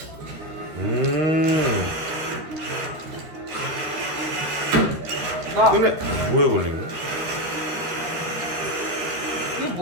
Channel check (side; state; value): left; late; 13 ms